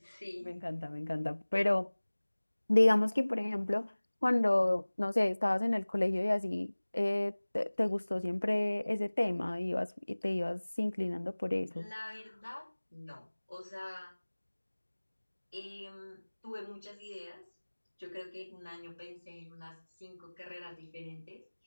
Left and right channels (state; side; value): inverted; both; correlation -1.00